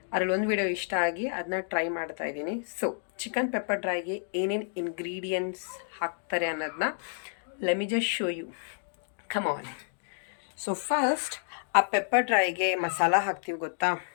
ಅದರಲ್ಲಿ ಒಂದು ವೀಡಿಯೋ ಇಷ್ಟ ಆಗಿ ಅದನ್ನ ಟ್ರೈ ಮಾಡ್ತಾ ಇದ್ದೀನಿ. ಸೊ ಚಿಕನ್ ಪೆಪ್ಪರ್ ಡ್ರೈಗೆ ಏನೇನು ಇಂಗ್ರೀಡಿಯೆಂಟ್ಸ್ ಹಾಕ್ತಾರೆ ಅನ್ನೋದನ್ನ let me just show you. Come on. So first ಆ ಪೆಪ್ಪರ್ ಡ್ರೈಗೆ ಮಸಾಲ ಹಾಕ್ತೀವಿ, ಗೊತ್ತಾ?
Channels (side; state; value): right; silent; digital silence